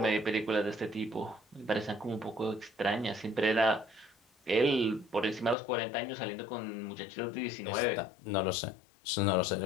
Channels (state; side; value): drops out; right; at 5.6 s